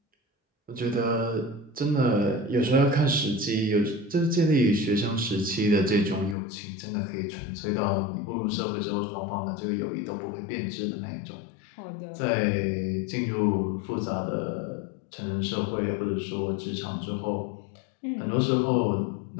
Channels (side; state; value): right; drops out; at 6.4 s